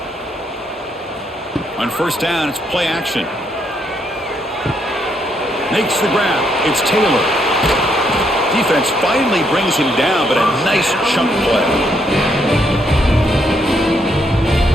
On 1st down, it's play action. Makes the grab. It's Taylor. Defense finally brings him down, but a nice chunk play.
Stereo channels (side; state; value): both; normal; correlation 0.74